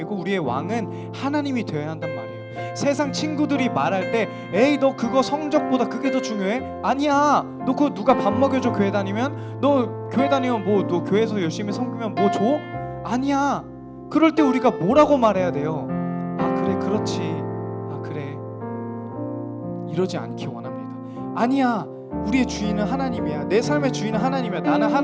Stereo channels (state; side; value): identical; both; correlation 1.00